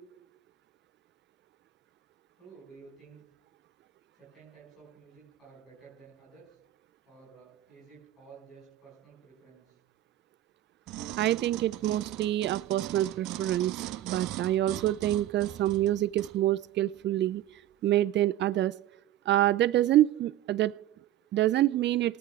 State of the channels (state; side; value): quieter; left; 13.4 dB